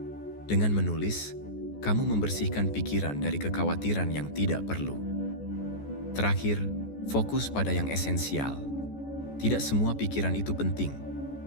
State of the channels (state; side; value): late; right; 14 ms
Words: Dengan menulis, kamu membersihkan pikiran dari kekhawatiran yang tidak perlu. Terakhir, fokus pada yang esensial. Tidak semua pikiran itu penting.